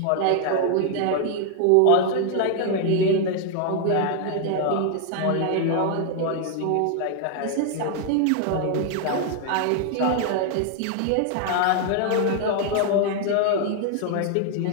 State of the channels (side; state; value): both; different; correlation 0.00